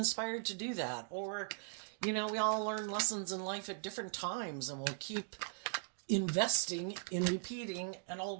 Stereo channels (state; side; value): silent; left; digital silence